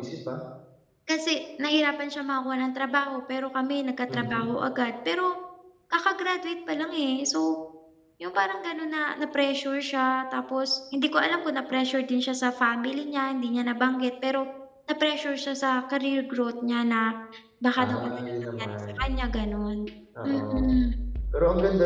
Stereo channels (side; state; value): both; identical; correlation 1.00